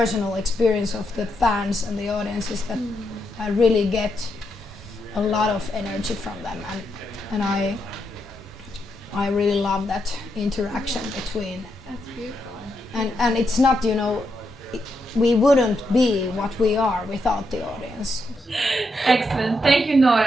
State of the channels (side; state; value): both; normal; correlation 0.82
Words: experience of the fans and the audience is that I really get a lot of energy from them, and I really love that interaction between. That's beautiful. And it's not, we wouldn't be what we are without the audience. Excellent. Thank you,